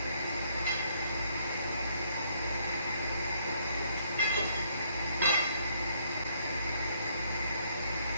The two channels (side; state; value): both; inverted; correlation -0.69